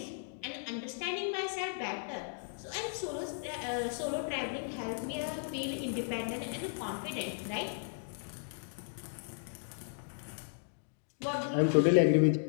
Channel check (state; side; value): silent; right; digital silence